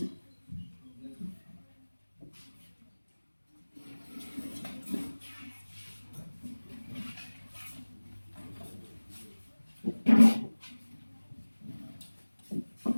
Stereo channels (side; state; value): both; inverted; correlation -1.00